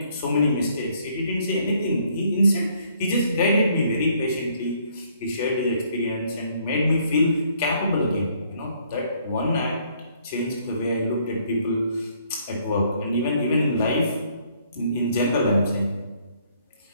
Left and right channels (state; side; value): inverted; both; correlation -0.66